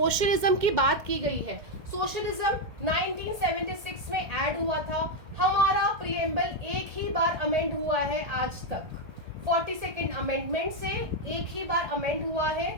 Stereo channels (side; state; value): left; late; 1.8 ms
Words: की बात की गई है. सोशलिज्म 1976 में ऐड हुआ था. हमारा प्रिएम्बल एक ही बार अमेंड हुआ है आज तक. 42nd अमेंडमेंट से एक ही बार अमेंड हुआ है,